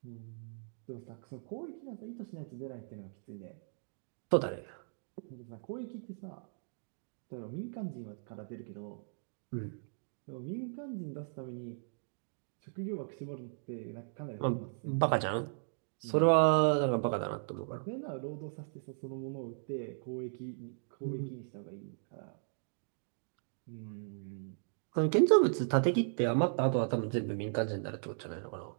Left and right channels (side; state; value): left; silent; digital silence